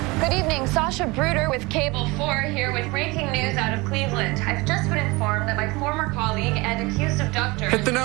Good evening, Sasha Bruder with Cable 4 here with breaking news out of Cleveland. I've just been informed that my former colleague and accused abductor Hit the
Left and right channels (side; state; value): left; quieter; 23.9 dB